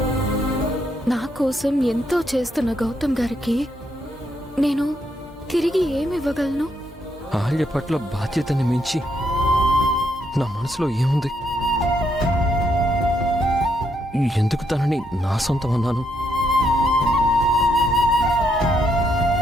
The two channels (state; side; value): normal; both; correlation 0.76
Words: నా కోసం ఎంతో చేస్తున్న గౌతమ్ గారికి నేను తిరిగి ఏమివ్వగలను? అహల్య పట్ల బాధ్యతని మించి నా మనసులో ఏముంది? ఎందుకు తనని నా సొంతం అన్నాను?